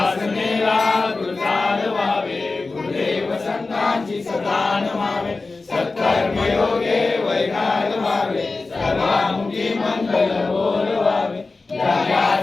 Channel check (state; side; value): quieter; right; 3.7 dB